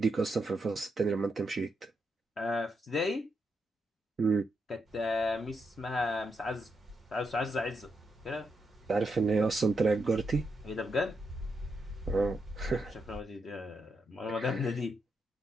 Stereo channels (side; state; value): both; normal; correlation 0.81